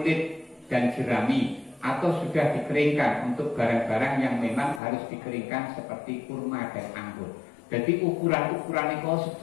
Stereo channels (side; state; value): right; drops out; at 4.8 s